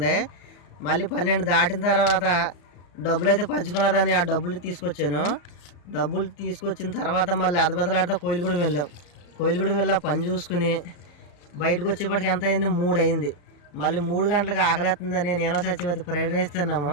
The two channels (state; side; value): late; right; 34 ms